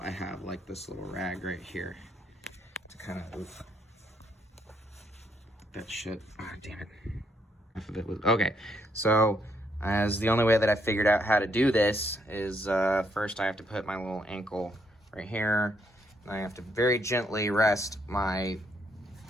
I have like this little rag right here to kind of, that shit, ah, damn it. Half of it was, okay. So as the only way that I figured out how to do this is first I have to put my little ankle right here, I have to very gently rest my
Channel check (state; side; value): normal; both; correlation 0.73